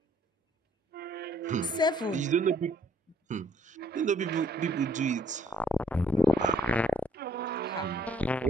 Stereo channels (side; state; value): both; normal; correlation 0.64